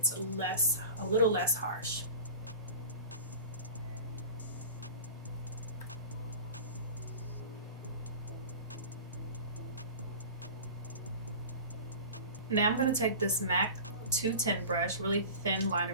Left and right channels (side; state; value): both; inverted; correlation -0.36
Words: a little less harsh. Now I'm going to take this MAC 210 brush, really thin liner